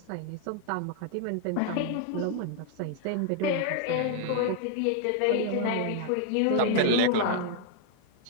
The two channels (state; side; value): different; both; correlation 0.00